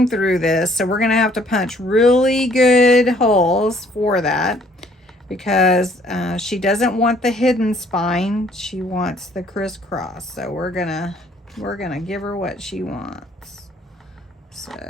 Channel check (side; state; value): both; normal; correlation 0.61